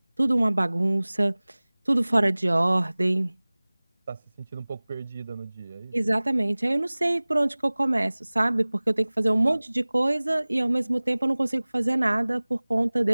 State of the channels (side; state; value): both; inverted; correlation -1.00